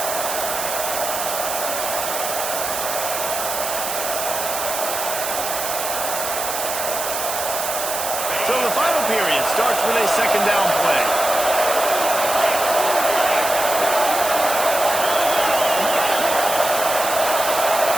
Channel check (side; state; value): right; noise; hiss, 4 dB below the sound